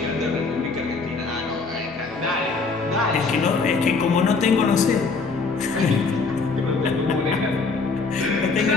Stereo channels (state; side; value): quieter; right; 4.3 dB